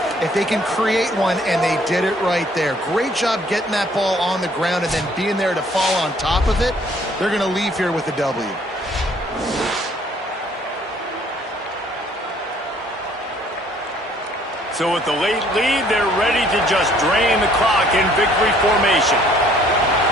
if they can create one, and they did it right there. Great job getting that ball on the ground and then being there to fall on top of it. They're going to leave here with a W. So with the late lead, they're ready to just drain the clock in victory formation.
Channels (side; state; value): both; normal; correlation 0.60